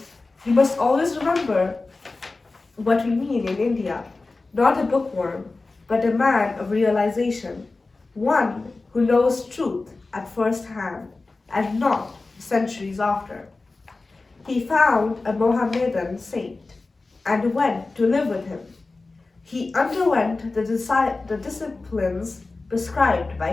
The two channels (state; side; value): quieter; right; 3.5 dB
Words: you must always remember what we mean in India, not a bookworm, but a man of realization, one who knows truth at first hand and not centuries after. He found a Mohammedan saint and went to live with him. He underwent the disciplines prescribed by